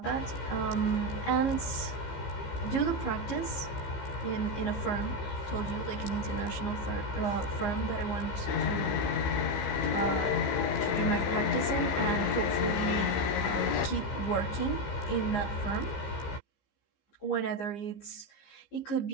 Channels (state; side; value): late; right; 15 ms